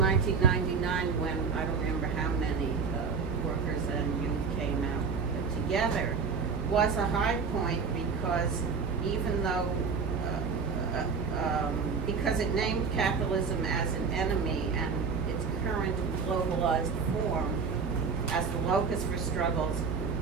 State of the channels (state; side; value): quieter; left; 5.4 dB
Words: when I don't remember how many workers and youth came out together, was a high point because even though, because it named capitalism as an enemy and its current globalized form as the locus for struggles